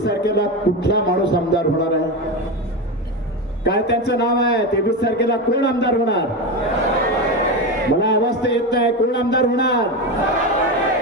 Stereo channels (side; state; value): both; normal; correlation 0.17